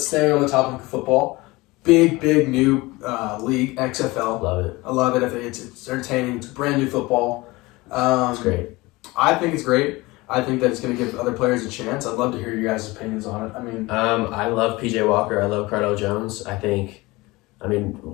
staying on the topic of football, big new league, XFL. Love it. I love it. I think it's entertaining. It's brand new football. It's great. I think it's great. I think that it's going to give other players a chance. I'd love to hear your guys' opinions on it. I mean, I love PJ Walker. I love Cardell Jones. What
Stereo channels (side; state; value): right; quieter; 21.8 dB